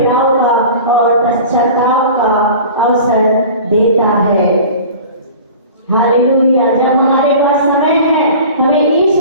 का और पश्चाताप का अवसर देता है। हालेलुया। जब हमारे पास समय है हमें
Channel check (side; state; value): both; inverted; correlation -0.40